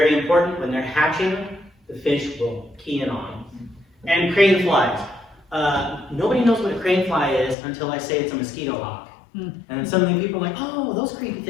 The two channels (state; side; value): drops out; right; at 7.6 s